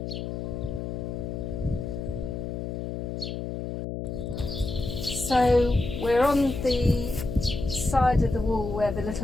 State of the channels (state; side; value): noise; left; hum, 5 dB below the sound